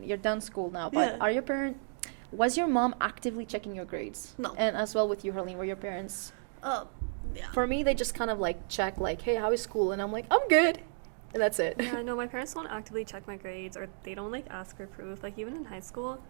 You're done school now, but yeah. Was your mom actively checking your grades? No. And as well with you, Harleen, were your parents? yeah. For me, they just kind of like check like, hey, how is school? And I'm like, I'm good. and that's it. Yeah, no, my parents don't actively check my grades, or they don't like ask for proof. Like even in high school,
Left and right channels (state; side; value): silent; left; digital silence